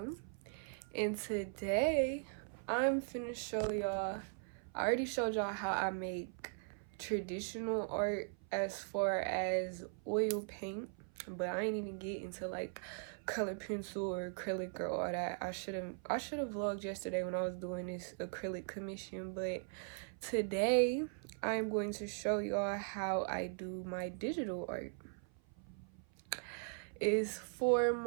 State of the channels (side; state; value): left; silent; 51 dB below the other